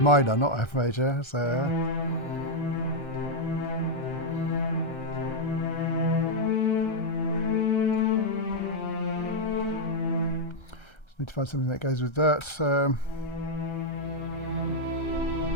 minor, not F major, so just need to find something that goes with that. So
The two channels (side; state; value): right; late; 1.3 ms